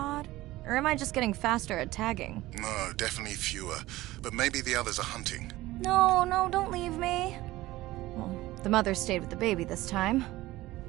Or am I just getting faster at tagging? No, definitely fewer. But maybe the others are hunting. No, don't leave me. Well, the mother stayed with the baby this time.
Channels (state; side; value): quieter; left; 17.6 dB